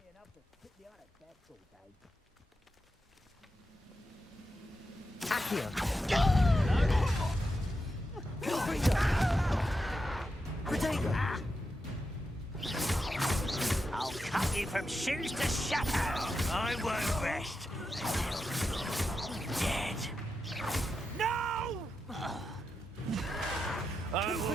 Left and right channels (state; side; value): normal; both; correlation 0.87